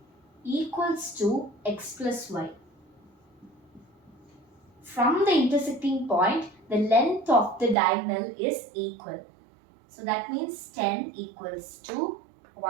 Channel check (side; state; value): left; drops out; at 7.8 s